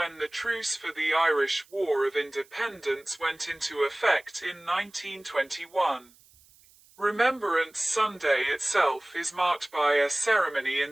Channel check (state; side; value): noise; right; hiss, 28 dB below the sound